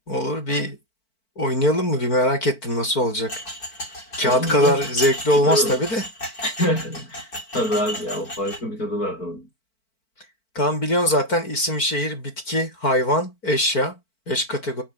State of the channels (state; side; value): late; right; 4.5 ms